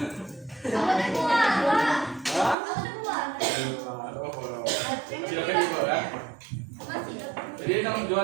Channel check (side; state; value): left; drops out; at 2.6 s